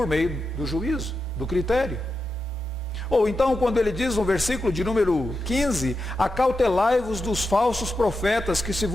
meio do juízo, do critério. Ou então, quando ele diz no versículo de número 15, acautelai-vos dos falsos profetas que se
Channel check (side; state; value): both; normal; correlation 0.89